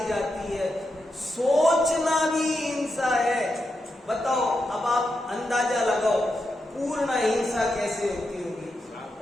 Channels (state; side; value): normal; both; correlation 0.86